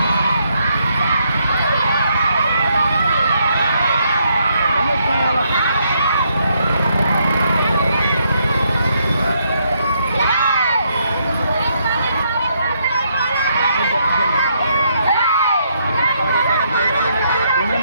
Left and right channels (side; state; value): both; inverted; correlation -0.75